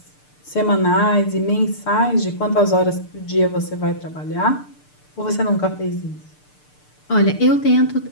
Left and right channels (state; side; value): late; right; 6.7 ms